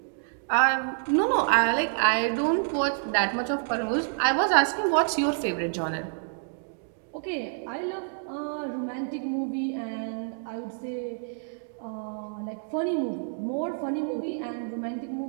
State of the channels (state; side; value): silent; left; digital silence